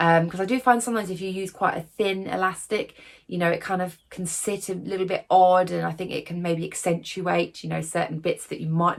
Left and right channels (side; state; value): both; identical; correlation 1.00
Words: I do find sometimes if you use quite a thin elastic, you know, it kind of can sit a little bit odd, and I think it can maybe accentuate, you know, certain bits that you might